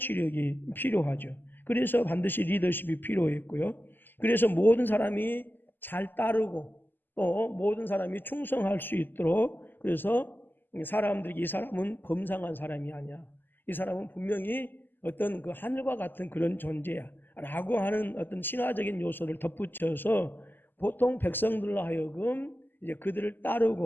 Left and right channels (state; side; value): late; right; 0.092 ms